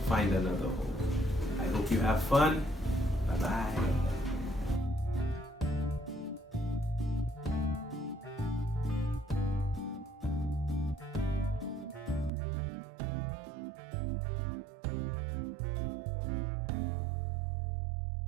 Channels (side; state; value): left; drops out; at 12.3 s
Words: find another hole. I hope you have fun. Bye-bye.